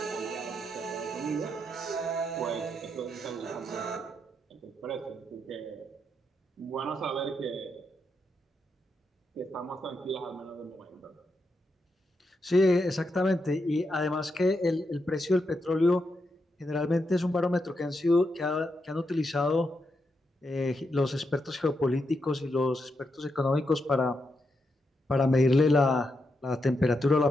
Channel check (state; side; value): normal; both; correlation 0.83